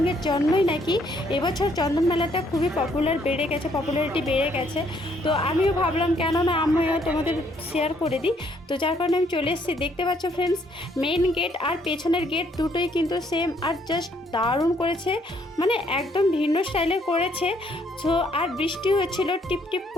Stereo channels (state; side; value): normal; both; correlation 0.68